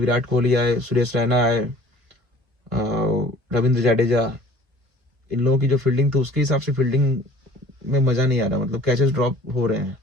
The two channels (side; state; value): left; late; 1.5 ms